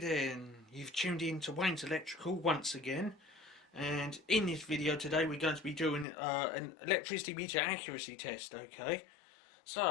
you've tuned in to Wayne's Electrical once again, and in this video today we're going to be doing an electricity meter accuracy test. Okay,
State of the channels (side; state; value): right; drops out; at 6.1 s